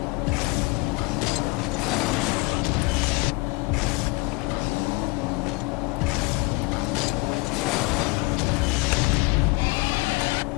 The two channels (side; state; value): right; quieter; 26.0 dB